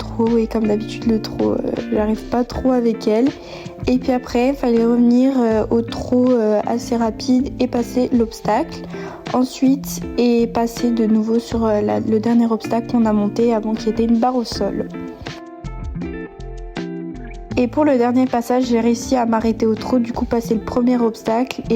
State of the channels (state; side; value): identical; both; correlation 1.00